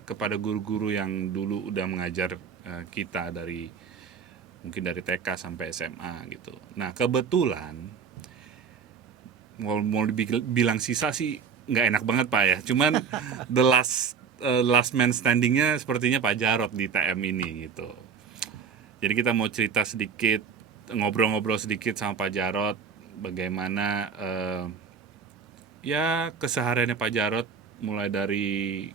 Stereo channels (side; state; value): left; quieter; 6.2 dB